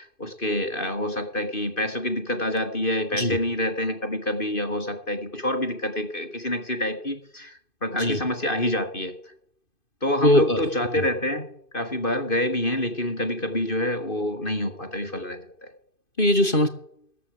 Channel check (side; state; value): right; late; 2.5 ms